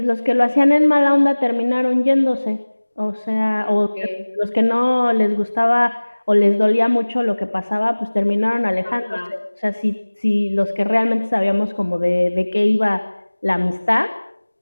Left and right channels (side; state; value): both; inverted; correlation -1.00